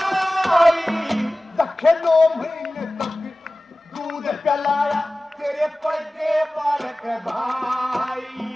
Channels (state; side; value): normal; both; correlation 0.97